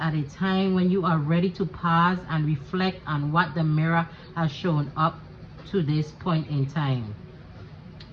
at a time when you are ready to pause and reflect on what the mirror has shown up to this point in time.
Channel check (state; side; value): identical; both; correlation 1.00